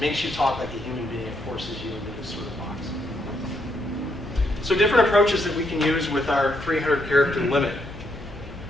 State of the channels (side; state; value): both; normal; correlation 0.76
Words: makes you talk like a human being. It forces you into this sort of box. So different approaches that we can use with our 300 character limit.